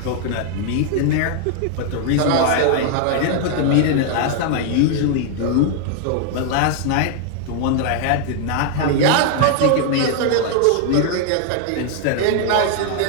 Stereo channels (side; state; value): both; different; correlation 0.00